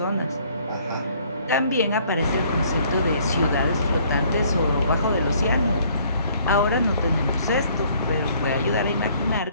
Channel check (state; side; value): inverted; both; correlation -0.61